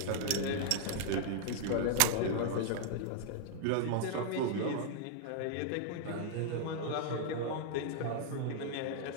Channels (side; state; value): both; different; correlation -0.01